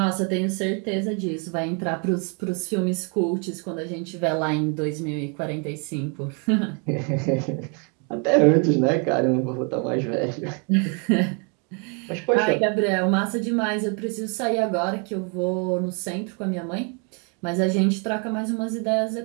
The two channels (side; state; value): left; quieter; 36.6 dB